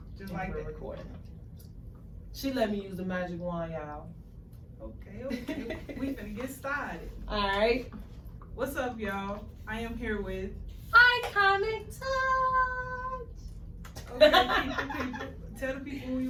Just like that. Recording. She let me use the magic wand, y'all. Okay. We finna get started. All right. What's up, y'all? I am here with Iconic Touch. Okay, people. Tell the people who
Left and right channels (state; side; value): identical; both; correlation 1.00